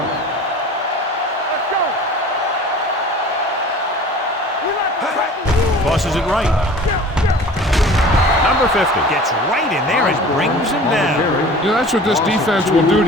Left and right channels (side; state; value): both; normal; correlation 0.43